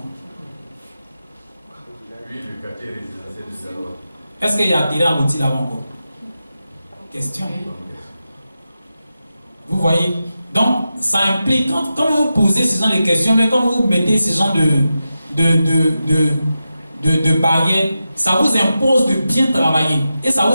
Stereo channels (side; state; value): both; inverted; correlation -0.91